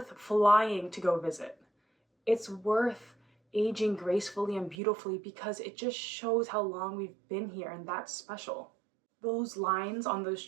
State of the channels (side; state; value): left; drops out; at 4.8 s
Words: flying to go visit. It's worth aging gracefully and beautifully because it just shows how long we've been here, and that's special. Those lines on those